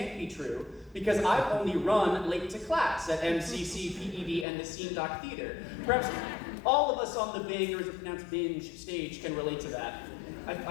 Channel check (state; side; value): drops out; right; at 4.5 s